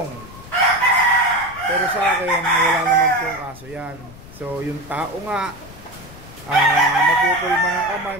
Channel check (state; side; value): noise; left; rumble, 18 dB below the sound